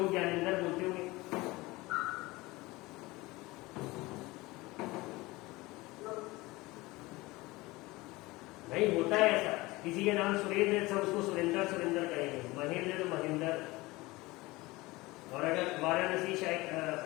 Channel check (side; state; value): right; quieter; 21.2 dB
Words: ज्ञानेंद्र बोलते होंगे। नहीं होता है ऐसा, किसी के नाम सुरेंद्र है सब उसको सुरेंद्र सुरेंद्र कहेंगे, महेंद्र है तो महेंद्र। और अगर वाराणसी